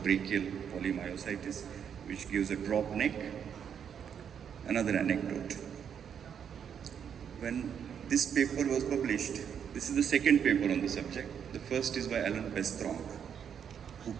polymyositis, which gives a drop neck. Another anecdote. When this paper was published, this is the second paper on the subject. The first is by Alan Pestronk, who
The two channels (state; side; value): quieter; left; 8.0 dB